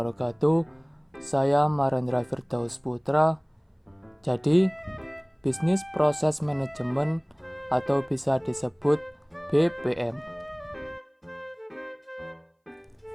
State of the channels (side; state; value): both; identical; correlation 1.00